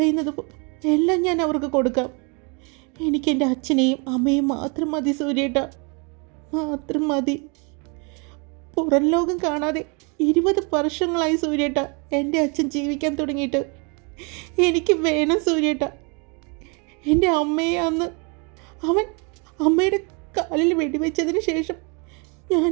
എല്ലാം ഞാൻ അവർക്ക് കൊടുക്കാം. എനിക്കെൻ്റെ അച്ഛനെയും അമ്മയും മാത്രം മതി സൂര്യേട്ടാ, മാത്രം മതി. പുറം ലോകം കാണാതെ 20 വർഷങ്ങളായി സൂര്യേട്ടാ എൻ്റെ അച്ഛൻ ജീവിക്കാൻ തുടങ്ങിയിട്ട്. എനിക്ക് വേണം സൂര്യേട്ട. എൻ്റെ അമ്മയെ അന്ന് അവൻ അമ്മയുടെ കാലിൽ വെടിവെച്ചതിന് ശേഷം ഞാൻ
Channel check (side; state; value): left; quieter; 33.2 dB